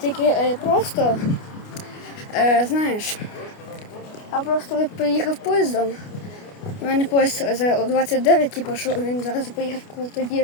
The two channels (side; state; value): right; late; 29 ms